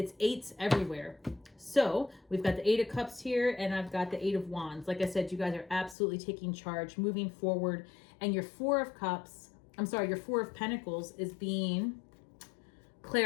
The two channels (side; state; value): right; drops out; at 6.0 s